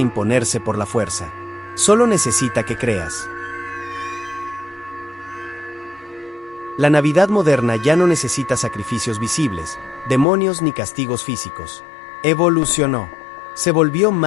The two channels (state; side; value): drops out; right; at 10.2 s